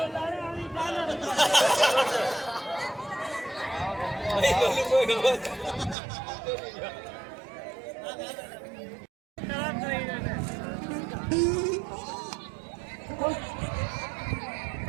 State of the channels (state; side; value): drops out; left; at 6.0 s